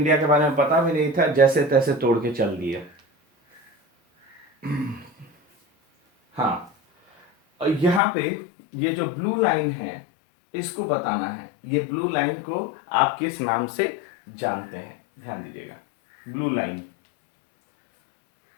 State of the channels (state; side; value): drops out; right; at 8.0 s